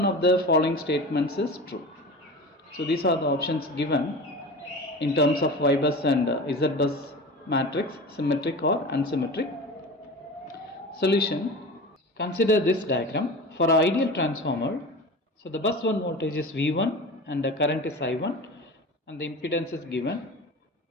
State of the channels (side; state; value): both; normal; correlation 0.32